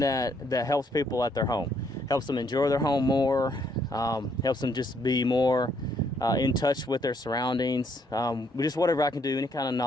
helps people at their home, helps them enjoy their home more, helps them just be more in touch with their surroundings. Just whatever I can do, any kind of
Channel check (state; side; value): normal; both; correlation 0.70